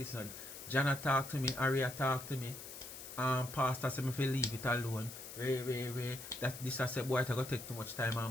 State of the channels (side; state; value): left; noise; hiss, 12 dB below the sound